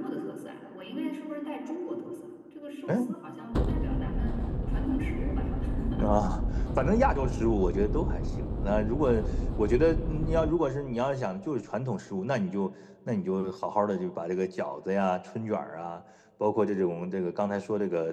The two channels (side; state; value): both; identical; correlation 1.00